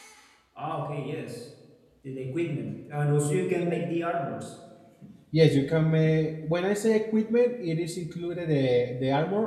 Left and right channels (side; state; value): both; identical; correlation 1.00